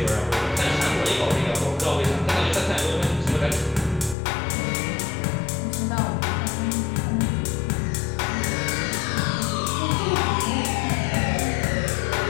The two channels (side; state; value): right; drops out; at 4.2 s